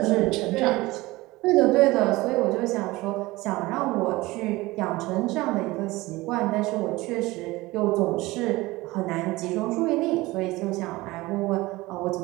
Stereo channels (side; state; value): left; quieter; 20.2 dB